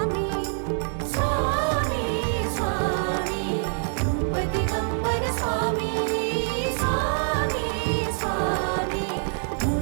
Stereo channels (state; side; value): silent; left; digital silence